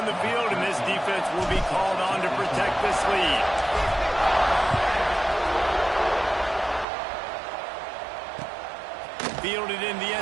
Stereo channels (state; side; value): drops out; left; at 6.9 s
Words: the field, and this defense will be called on to protect this lead. Fielded in the